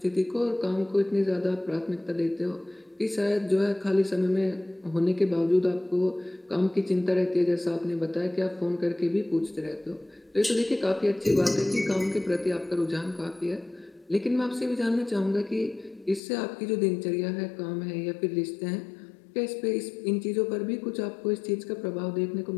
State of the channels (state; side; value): drops out; right; at 16.2 s